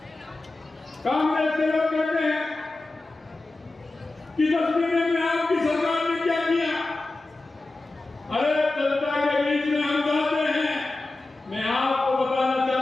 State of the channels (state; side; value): quieter; right; 3.1 dB